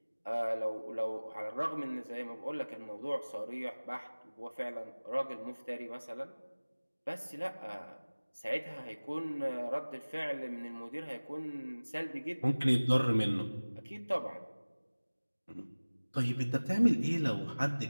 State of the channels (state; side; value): inverted; both; correlation -1.00